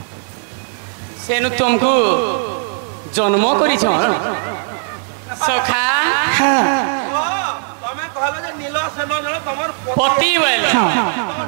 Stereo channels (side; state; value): left; silent; digital silence